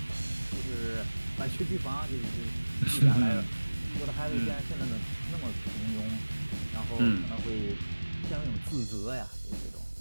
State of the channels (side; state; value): both; inverted; correlation -1.00